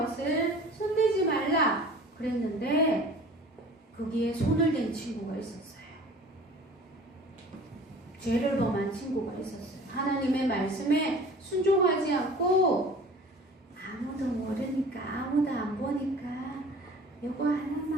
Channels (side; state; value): both; normal; correlation 0.45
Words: 손대지 말라 그랬는데 거기에 손을 댄 친구가 있었어요. 죄를 범한 친구가 있었어요. 하나님의 말씀에 순종하지 않고 아무도 모르니까 아무도 안 보니까 요거